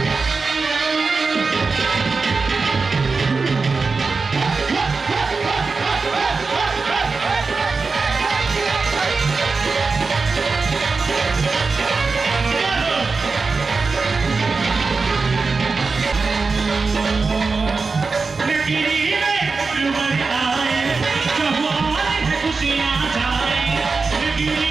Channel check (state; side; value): quieter; left; 4.3 dB